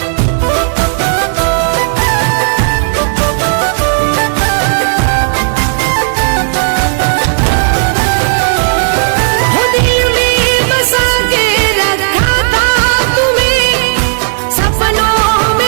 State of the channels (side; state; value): left; silent; digital silence